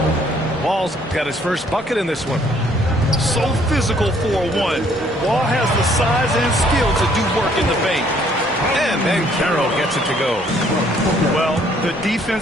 Wall's got his first bucket in this one. So physical for a 1. Wall has the size and skill to do work in the paint. And then Carroll gets it to go. Well, the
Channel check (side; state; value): both; normal; correlation 0.63